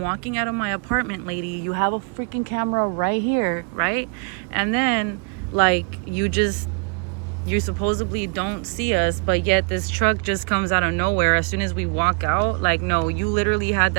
walking out of my apartment, lady? You have a freaking camera right here, right? And then, like, you supposedly don't see us, but yet this truck just comes out of nowhere as soon as we walk out. Like, no, you literally had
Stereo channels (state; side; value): quieter; left; 37.7 dB